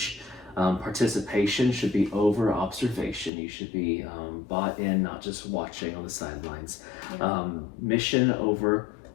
Participation should be over observation. You should be bought in, not just watching on the sidelines. Yeah. Mission over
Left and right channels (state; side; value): drops out; right; at 3.3 s